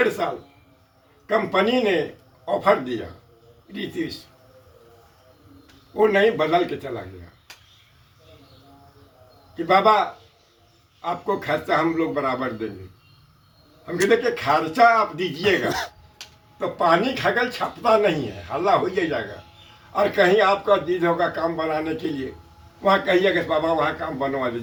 साल कंपनी ने ऑफर दिया, रीतिश वो नहीं, बदल के चला गया कि बाबा आपको खर्चा हम लोग बराबर देंगे। हम कहते कि खर्चा आप दीजिएगा तो पानी खगल छपता नहीं है, हल्ला हो जाएगा। और कहीं आपका जिद होगा काम बनाने के लिए, वहाँ कहिएगा बाबा वहाँ काम बनवा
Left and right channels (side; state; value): both; identical; correlation 1.00